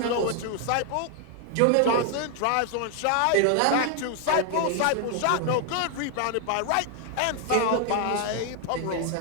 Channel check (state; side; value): different; both; correlation 0.00